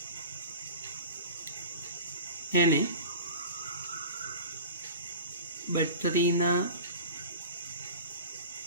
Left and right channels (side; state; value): both; inverted; correlation -0.36